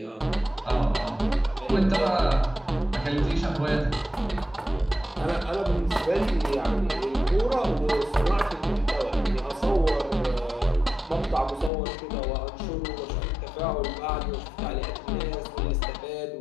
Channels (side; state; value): right; drops out; at 11.7 s